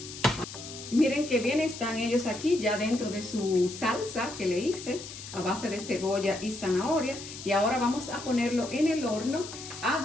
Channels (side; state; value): left; noise; hiss, 12 dB below the sound